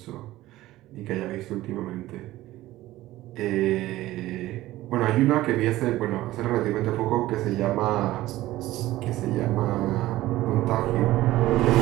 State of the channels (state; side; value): quieter; left; 16.3 dB